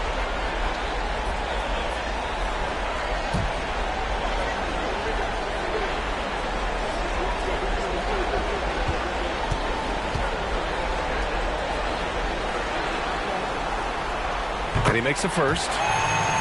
And he makes the first.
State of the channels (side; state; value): both; identical; correlation 1.00